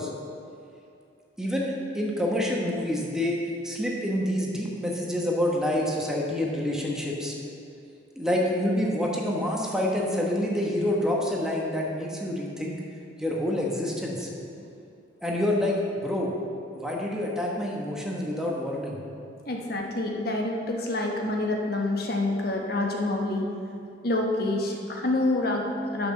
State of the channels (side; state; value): both; normal; correlation 0.59